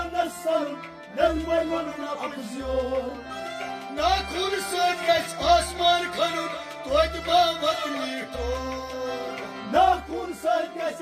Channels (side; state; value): both; identical; correlation 1.00